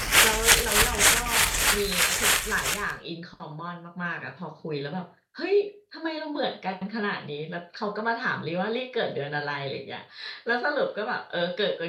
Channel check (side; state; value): both; identical; correlation 1.00